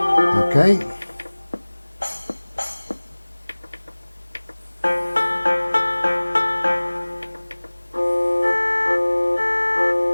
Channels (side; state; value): both; inverted; correlation -1.00